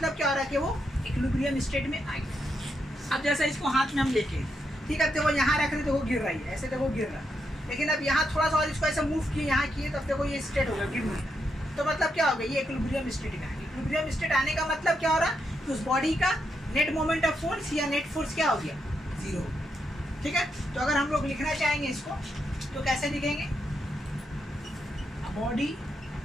क्या हो रहा है कि वो इक्विलिब्रियम स्टेट में आ गया। अब जैसा इसको हाथ में हम लेके, ठीक है, तो वो यहाँ रख रहे तो वो गिर रही है, ऐसे तो वो गिर रहा है, लेकिन अब यहाँ थोड़ा सा और इसको ऐसे मूव किए, यहाँ किए, तब देखो ये स्टेट हो गया, गिर नहीं। तो मतलब क्या हो गया, ये इक्विलिब्रियम स्टेट में आ गया। इक्विलिब्रियम स्टेट आने का मतलब क्या हो रहा है कि उस बॉडी का नेट मोमेंट ऑफ फोर्स या नेट फोर्स क्या हो गया, जीरो। ठीक है, तो अगर हम लोग लिखना चाहेंगे इसको तो कैसे लिखेंगे, body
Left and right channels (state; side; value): normal; both; correlation 0.82